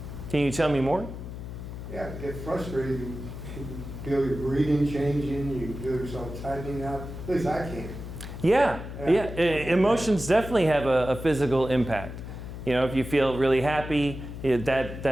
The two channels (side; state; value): left; noise; hum, 9 dB below the sound